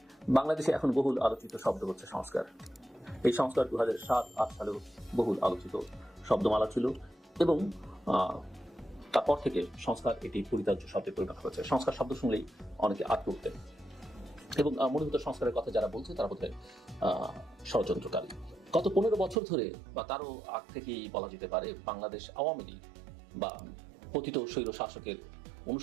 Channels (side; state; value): left; drops out; at 19.4 s